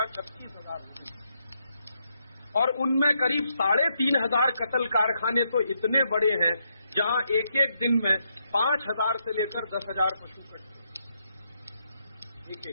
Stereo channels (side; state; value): both; inverted; correlation -0.78